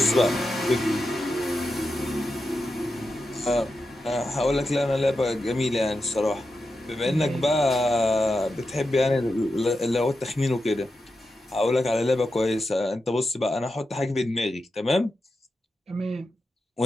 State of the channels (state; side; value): normal; both; correlation 0.89